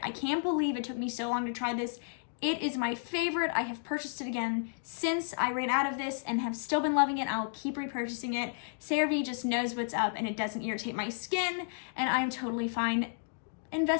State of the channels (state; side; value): silent; right; digital silence